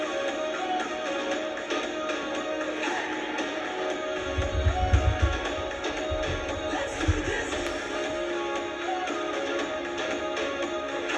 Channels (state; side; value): identical; both; correlation 1.00